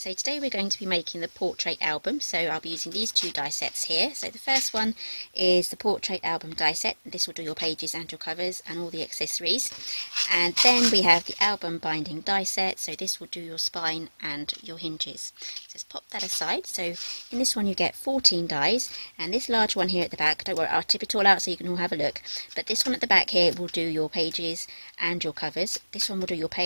today we're going to be making the portrait album. So I'll be using these two die sets here. So the first one is the portrait album die set. This will do your pages and your covers and all the accessories. And then we have the album binding die set. So this will do your spine and your hinges. So let's pop that aside. So in this one you get 14 dies, and this large one here at the back, don't worry, I'll tip it all out so you can all have a look. But this one at the back here will do your pages and your covers. This one will do your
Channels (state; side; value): inverted; both; correlation -1.00